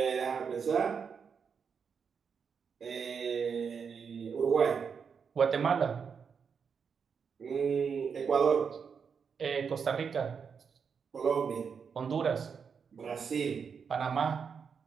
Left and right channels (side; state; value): left; quieter; 6.3 dB